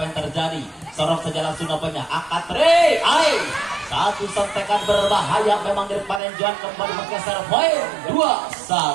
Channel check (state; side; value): drops out; left; at 6.2 s